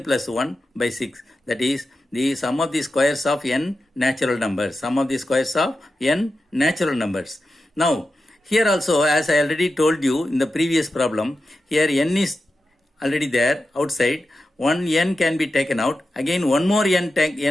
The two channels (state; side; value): normal; both; correlation 0.91